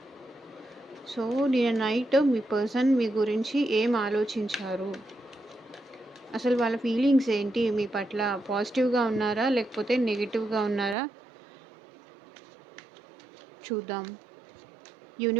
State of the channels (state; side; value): drops out; left; at 11.0 s